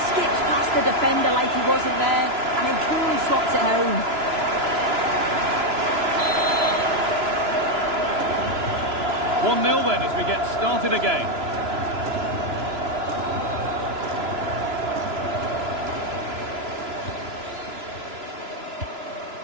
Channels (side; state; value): left; late; 3.0 ms